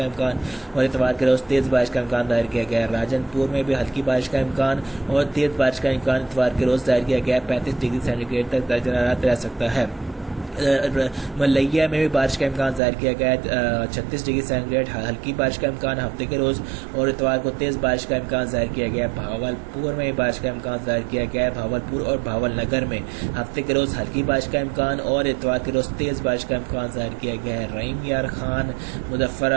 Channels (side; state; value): left; drops out; at 12.8 s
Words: امکان اور اتوار کے روز تیز بارش کا امکان ظاہر کیا گیا ہے۔ راجن پور میں بھی ہلکی بارش کا امکان اور تیز بارش کا امکان اتوار کے روز ظاہر کیا گیا 35 ڈگری سینٹی گریڈ تک درجہ حرارت رہ سکتا ہے۔ ملیا میں بھی بارش کا امکان ظاہر کیا گیا ہے 36 ڈگری سینٹی گریڈ ہلکی بارش کا امکان ہفتے کے روز اور اتوار کو تیز بارش کا امکان ظاہر کیا گیا ہے۔ بھاولپور میں بھی بارش کا امکان ظاہر کیا گیا ہے بھاولپور اور بھاول نگر میں ہفتے کے روز ہلکی بارش کا امکان اور اتوار کے روز تیز بارش کا امکان ظاہر کیا گیا ہے۔ رحیم یار خان، مظفر